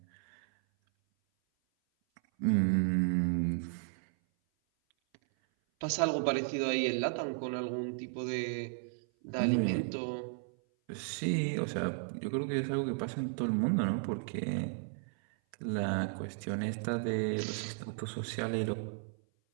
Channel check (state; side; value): silent; left; 55 dB below the other